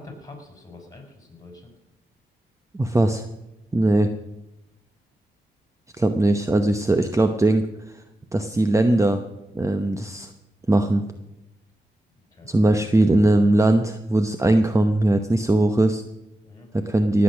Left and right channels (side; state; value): both; normal; correlation 0.92